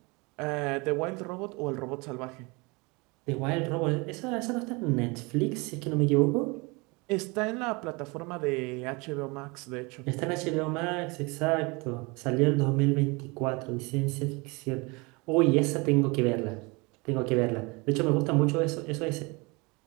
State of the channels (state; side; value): quieter; left; 27.2 dB